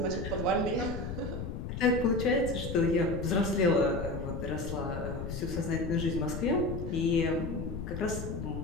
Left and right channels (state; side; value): noise; left; rumble, 6 dB below the sound